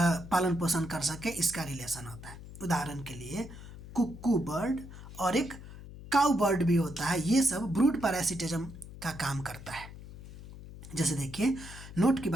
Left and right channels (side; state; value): left; noise; hum, 14 dB below the sound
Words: पोषण कर सके इसका रिलेशन होता है। उदाहरण के लिए कुक्कू बर्ड और एक काउ बर्ड भी होता है, ये सब ब्रूड पैरासिटिज्म का काम करता है। जैसे देखिए नोट की